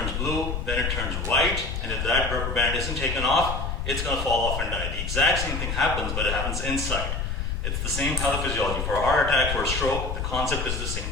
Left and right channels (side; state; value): left; noise; rumble, 3 dB below the sound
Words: blue, then it turns white, and if that rubber band isn't taken off, it's going to fall off and die. The exact same thing happens, but it happens inside. It's the same pathophysiology. For a heart attack, for a stroke, the concept is the same.